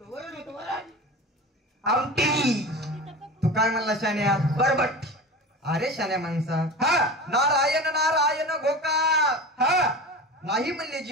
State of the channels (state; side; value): normal; both; correlation 0.32